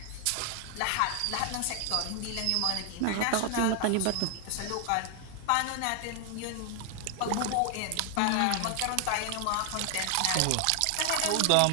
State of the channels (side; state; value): both; different; correlation 0.00